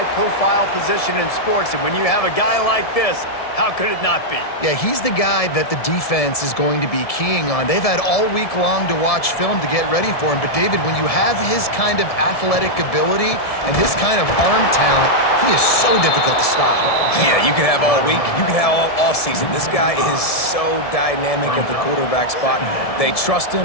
position in sports, and when you have a guy like this, how could it not be? Yeah, he's the guy that the defense is going to be keying on. They've had all week long to watch film to get ready for him. But, David, when you have his kind of athletic ability and his kind of arm talent, he is so difficult to stop. Yeah, you can have all week. You can have all season. This guy is so dynamic at the quarterback spot. They trust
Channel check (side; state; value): right; late; 1.7 ms